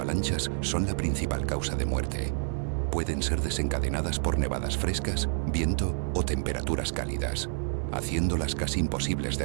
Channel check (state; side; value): silent; left; 57 dB below the other